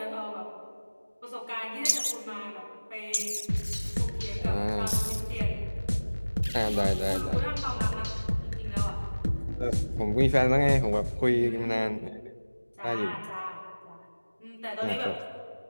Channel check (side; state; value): both; inverted; correlation -1.00